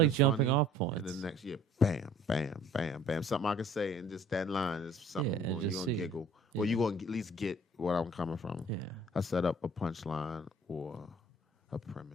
that's jumping funny, off and points. the next year, bam, bam, bam, bam, something I can say, and just that line is something Yeah, and you're just gonna see. giggle, or Yeah. you gonna at least get where I'm coming from. Yeah, I set up a punchline or a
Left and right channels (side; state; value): both; normal; correlation 0.52